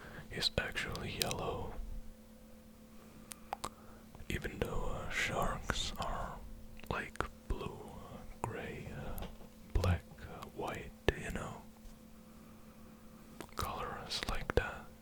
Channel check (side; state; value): both; identical; correlation 1.00